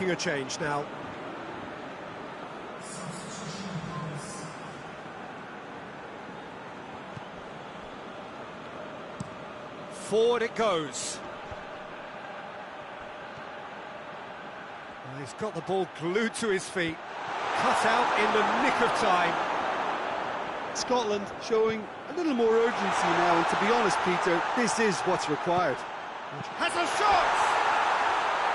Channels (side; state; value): both; identical; correlation 1.00